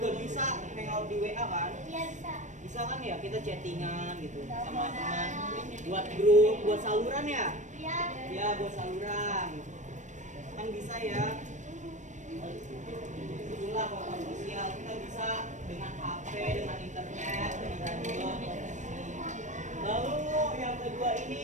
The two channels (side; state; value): left; late; 0.35 ms